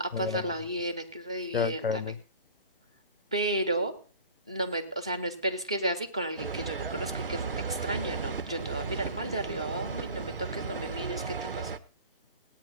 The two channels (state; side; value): inverted; both; correlation -0.40